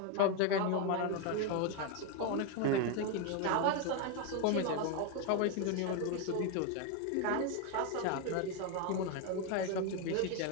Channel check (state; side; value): different; both; correlation 0.02